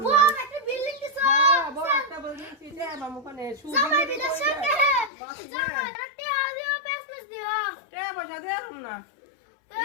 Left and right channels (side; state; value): right; drops out; at 5.1 s